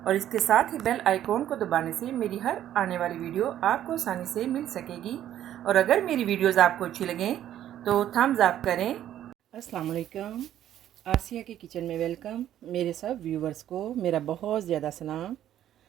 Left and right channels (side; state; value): left; quieter; 11.6 dB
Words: और इसके साथ ही बेल आइकॉन को दबाने से मेरी हर आने वाली वीडियो आपको आसानी से मिल सकेगी। और अगर मेरी वीडियोस आपको अच्छी लगें तो थम्स अप करें। अस्सलाम वालेकुम, आसिया के किचन में वेलकम। मेरे सब व्यूवर्स को मेरा बहुत ज़्यादा सलाम